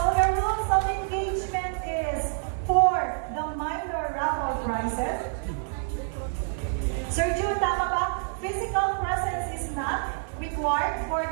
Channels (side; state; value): left; silent; digital silence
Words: the rules of engagement is for the minor raffle prizes. Sir Jude, tama ba? Physical presence is not required for